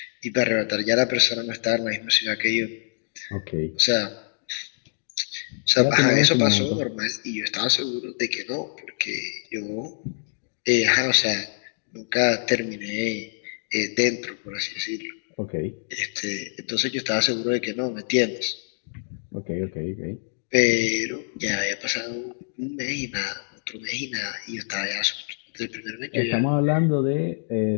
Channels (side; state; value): right; silent; digital silence